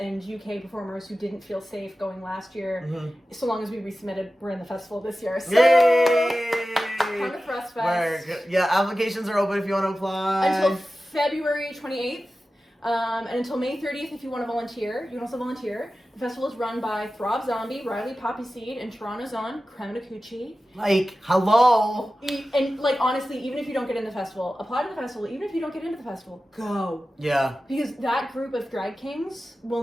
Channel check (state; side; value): normal; both; correlation 0.94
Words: UK performers who didn't feel safe going last year, so long as we resubmitted, we're in the festival this year. So, yay! come to Thrustfest. Yeah, applications are open if you want to apply. Until February 28th, and until May 30th if you want to volunteer. You can also volunteer. The festival is run by Throb Zombie, Riley Poppy Seed, and Toronto's own Creme de Coochie. Like, hello! And, like, honestly, even if you don't get in the festival, apply to the festival. Even if you don't get into the festival, go. Yeah. Because that group of drag kings will